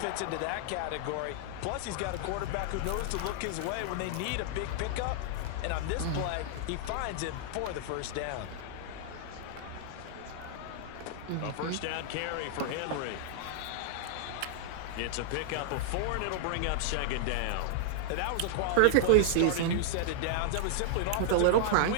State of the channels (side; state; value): both; different; correlation -0.01